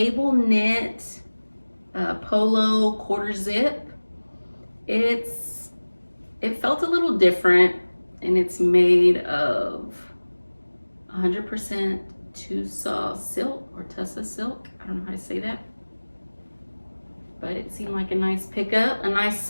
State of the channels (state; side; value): inverted; both; correlation -1.00